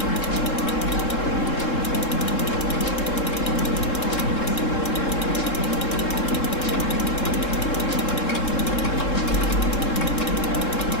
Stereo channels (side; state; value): right; late; 3.7 ms